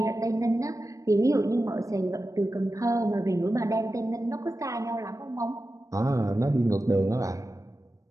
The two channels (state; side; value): late; left; 0.16 ms